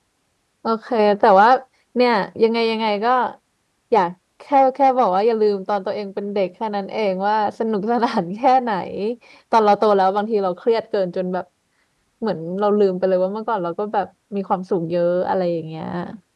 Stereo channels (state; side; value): identical; both; correlation 1.00